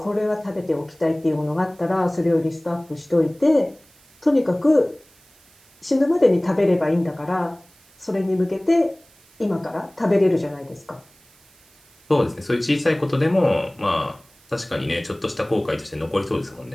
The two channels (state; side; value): noise; right; hiss, 30 dB below the sound